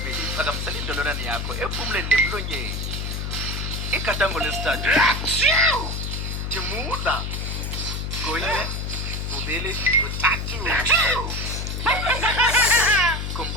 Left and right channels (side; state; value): left; noise; hum, 3 dB below the sound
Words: phakamisela indololwane yakho ephumuleni nemlonyeni. Igadango lesithathu thimula. Kunye, kubili, kuthathu.